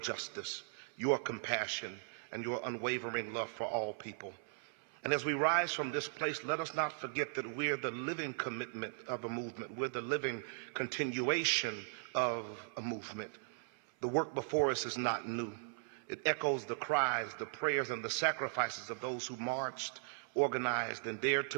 your compassion, and your unwavering love for all people. And as we rise from this place, let us not forget that we're the living commitment of a movement. We're the living continuation of a movement. The work before us is not new. It echoes the cries, the prayers, and the sacrifices of those who marched, organized, and dared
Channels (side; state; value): left; silent; 52 dB below the other